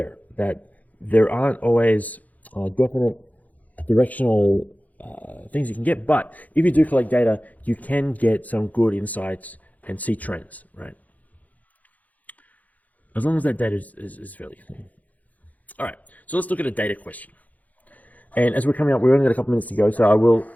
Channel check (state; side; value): late; right; 0.077 ms